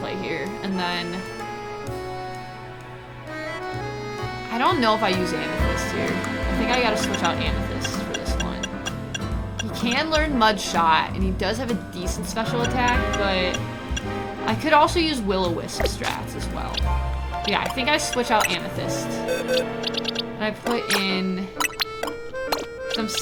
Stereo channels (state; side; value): identical; both; correlation 1.00